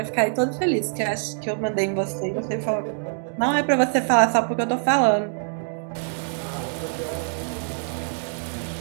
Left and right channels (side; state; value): left; silent; digital silence